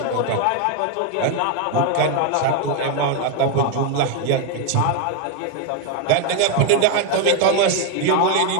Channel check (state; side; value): different; both; correlation 0.01